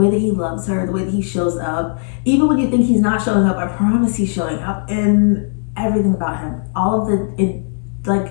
that he loves her, the way that he shows up, even when you think he's not showing up, I promise he's showing up. And everything about him, all of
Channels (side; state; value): right; silent; 68 dB below the other